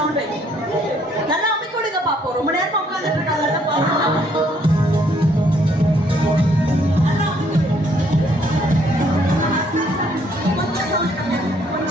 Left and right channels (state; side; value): normal; both; correlation 0.66